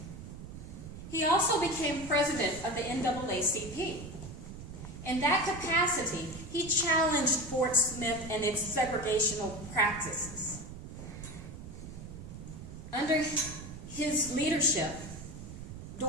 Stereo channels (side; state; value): right; noise; rumble, 11 dB below the sound